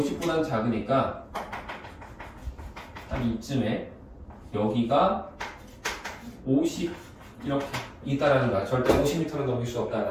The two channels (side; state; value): both; identical; correlation 1.00